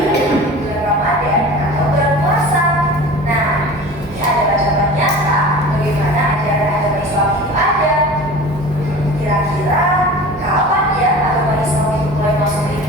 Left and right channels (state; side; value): normal; both; correlation 0.38